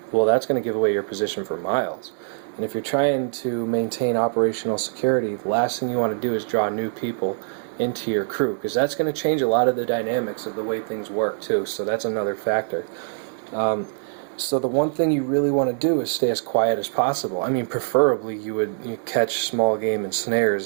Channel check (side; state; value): left; silent; digital silence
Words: well, that's going to give away your position for miles. And if you're trying to maintain operational security, the last thing you want to do is draw new people into your crew, because that's going to change a lot of the dynamics of the way things work too. So that's another factor. So the one thing you really want to do is stay as quiet as possible. I mean, preferably you catch small game and